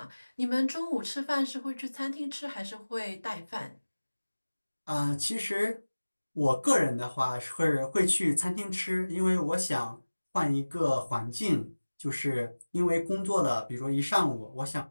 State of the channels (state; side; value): inverted; both; correlation -1.00